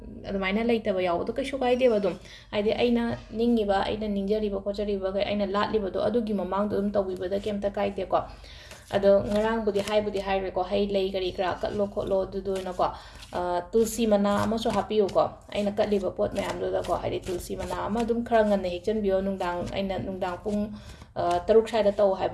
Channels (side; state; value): both; identical; correlation 1.00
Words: adumana laitaba yaawdo kaisu kaideba dum haidi aina ningiba aina ningjariba khochariba ga aina latliba do adugi mamang dum tawibada kemta kaide ko ado ngarang budi haire ko hai lei gari kra katlo kholo du na ko tulsi mana ama so happy ko aina katliba pot mayam do da ko haidi tulsi mana ama dum khara ngan ne hekchan bio nungdang aina nungdang pung taruk saida taw